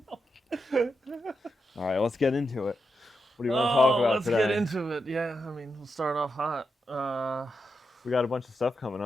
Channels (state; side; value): normal; both; correlation 0.86